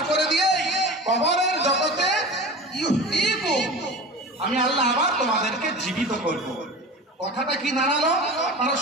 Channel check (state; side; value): normal; both; correlation 0.34